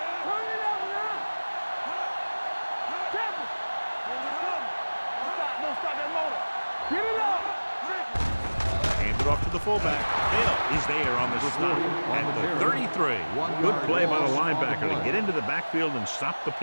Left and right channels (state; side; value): inverted; both; correlation -1.00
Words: it up now. Temple. Don't stop that motor. Get it up. Hand it off to the fullback. Hill is there on the stop at the 33. Good play by the linebacker to get into the backfield and stop the